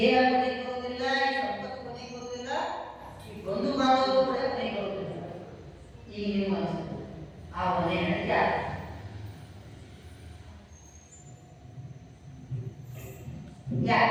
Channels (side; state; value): both; identical; correlation 1.00